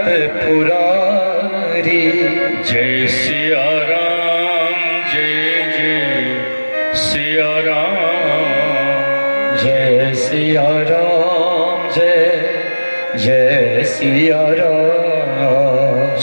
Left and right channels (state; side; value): inverted; both; correlation -1.00